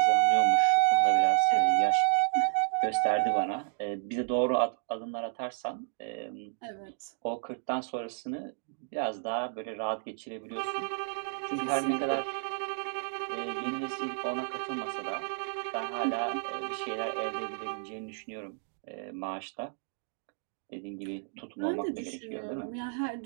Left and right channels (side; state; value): left; silent; digital silence